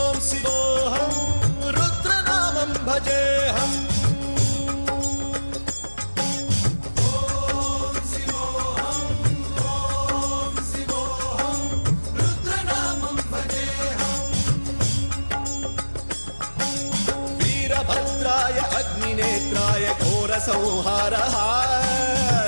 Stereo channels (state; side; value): inverted; both; correlation -1.00